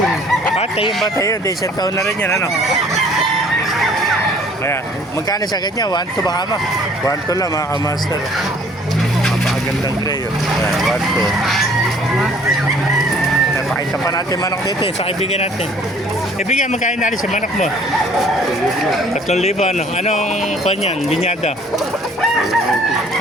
Tayo ba tayo? Di isang taon na rin yan, ano? Kaya, magkano sa kanya? 1-2 ba kama? 1-2 lang, mga kamaster. Napakagandang gray, oh. Ayan, 1-2. Pakita pa natin manok dito, sa kaibigan natin. Kaibigan, magkano na rin sa manok mo? 3,000, ano? Anong kanyan? Binyada?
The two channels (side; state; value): both; normal; correlation 0.55